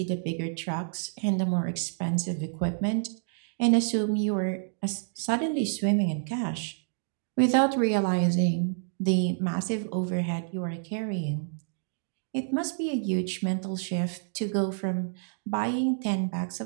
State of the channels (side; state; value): left; silent; digital silence